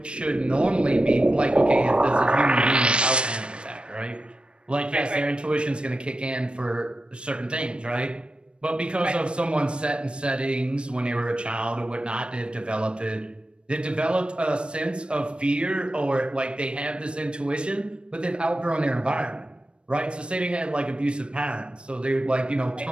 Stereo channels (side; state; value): left; late; 0.056 ms